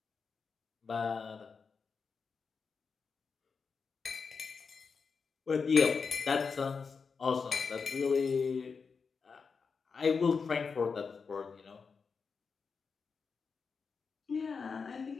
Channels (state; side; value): quieter; right; 5.3 dB